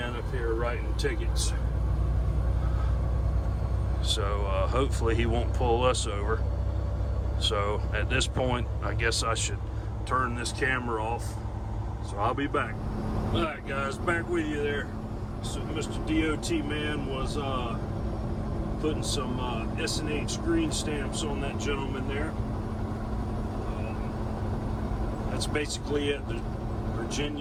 up here writing tickets, so hopefully he won't pull us over. So at this point, I guess I should turn this camera off, so I'll be back. All right, guys, back with you there. So Mr. DOT man was putting some S&H green stamps on that gentleman there. That's basically at the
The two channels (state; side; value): identical; both; correlation 1.00